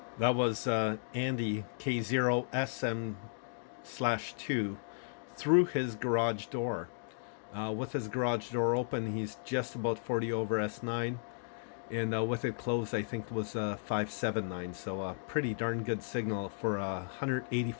That was Andy K0SM/2 through his garage door. With his garage door open, he's just about 40 over S9, and with it closed, I think it was 579. So a pretty darn good signal for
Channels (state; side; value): silent; right; digital silence